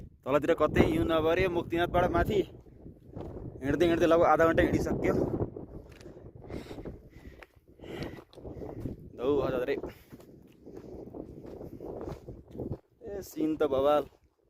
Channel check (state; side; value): identical; both; correlation 1.00